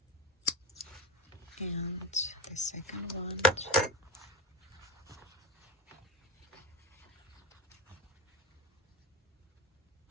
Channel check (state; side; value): normal; both; correlation 0.11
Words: And the second one.